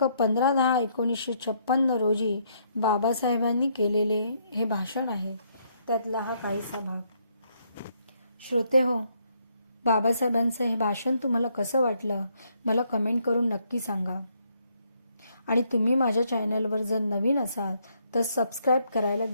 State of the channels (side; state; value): both; inverted; correlation -0.72